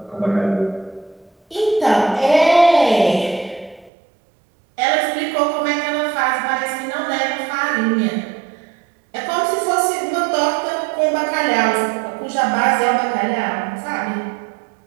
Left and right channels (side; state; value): left; drops out; at 3.9 s